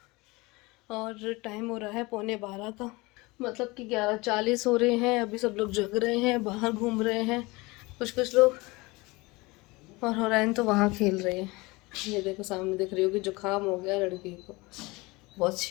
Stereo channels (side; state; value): right; quieter; 23.5 dB